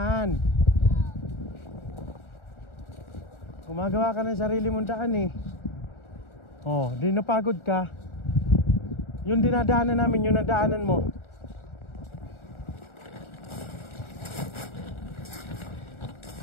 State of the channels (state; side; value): late; right; 1.4 ms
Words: Gumagawa ka ng sarili mong daan eh. Oh, di napagod ka. Yung dinadaanan namin, yung nadaanan mo.